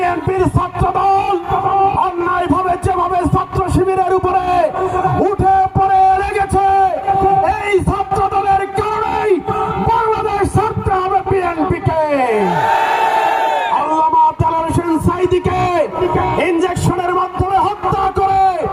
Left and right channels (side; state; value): both; identical; correlation 1.00